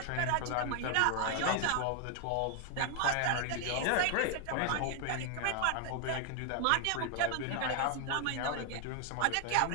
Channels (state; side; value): different; both; correlation 0.01